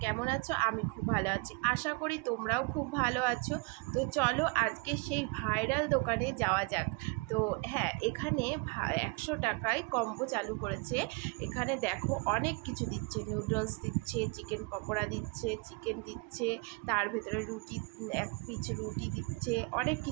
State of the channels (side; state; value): left; quieter; 29.5 dB